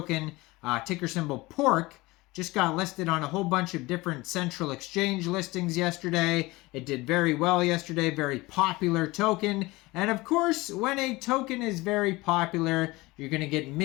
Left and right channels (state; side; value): quieter; right; 21.4 dB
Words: ticker symbol pork, just got listed on a whole bunch of different central exchange listings yesterday. It did very well yesterday, very popular token. And of course, when a token is very popular, you're gonna get